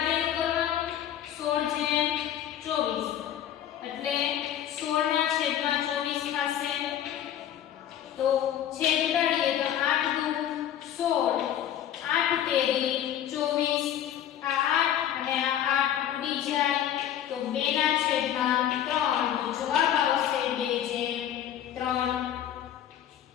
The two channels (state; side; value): quieter; right; 10.7 dB